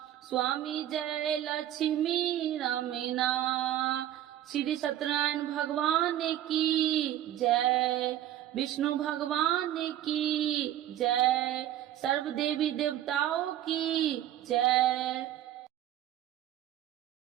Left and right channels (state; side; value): quieter; left; 12.3 dB